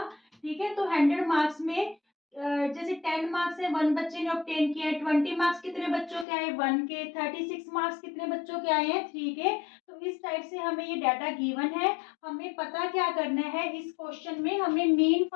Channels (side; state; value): right; drops out; at 6.2 s